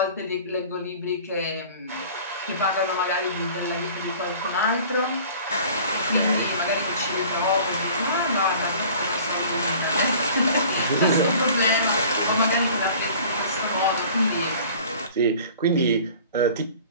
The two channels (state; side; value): inverted; both; correlation -0.46